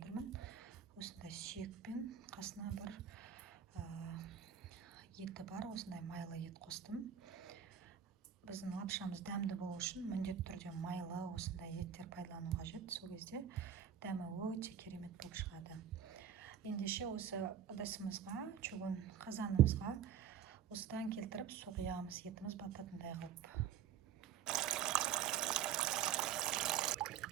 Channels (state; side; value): quieter; left; 8.8 dB